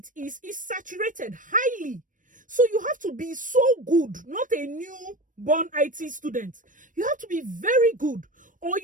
is saturated highly. So you have to be so good, not a newborn IT student. You have to be very good, or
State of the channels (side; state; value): left; late; 0.38 ms